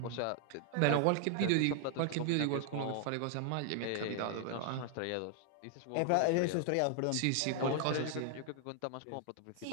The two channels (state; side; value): different; both; correlation 0.00